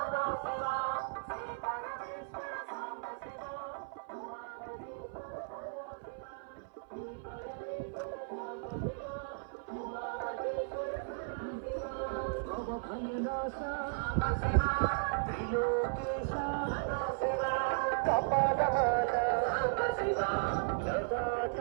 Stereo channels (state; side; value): silent; left; 54 dB below the other